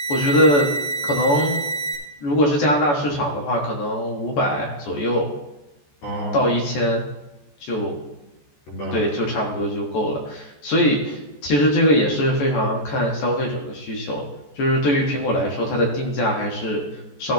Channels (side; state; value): right; late; 14 ms